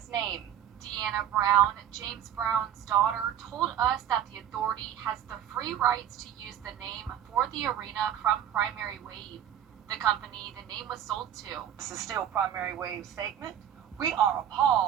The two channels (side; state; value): left; quieter; 10.3 dB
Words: name. Deanna Brown, James Brown's daughter, told us that the authority has the free rights to use the name for the arena from Primary Wave, the company the name was sold to. This is still Primary Wave statement. We are